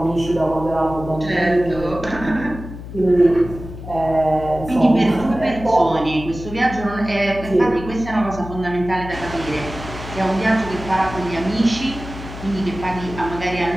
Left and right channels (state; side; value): noise; left; hum, 12 dB below the sound